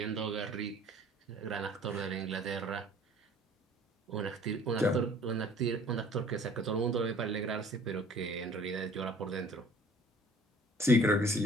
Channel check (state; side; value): normal; both; correlation 0.53